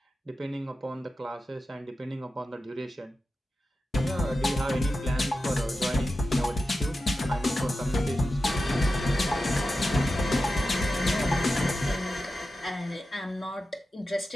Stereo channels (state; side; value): normal; both; correlation 0.92